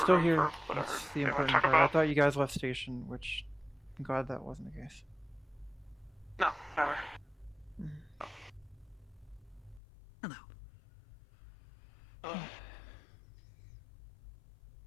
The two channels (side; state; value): right; drops out; at 9.8 s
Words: still room here. for whatever That's the they want to important talk part. I about. thought you guys left station, which I'm glad that wasn't the case. No, never. Hello.